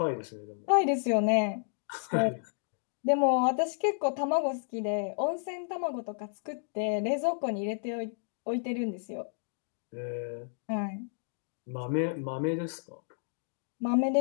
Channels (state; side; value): silent; right; digital silence